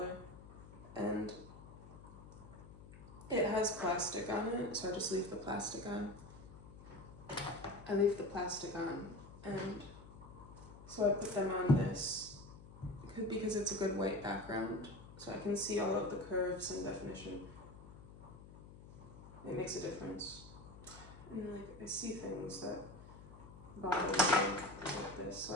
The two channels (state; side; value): noise; left; hum, 17 dB below the sound